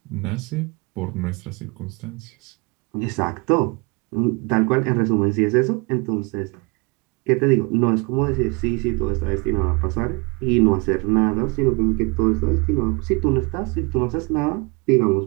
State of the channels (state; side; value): quieter; left; 28.8 dB